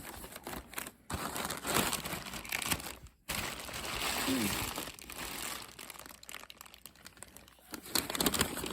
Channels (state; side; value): identical; both; correlation 1.00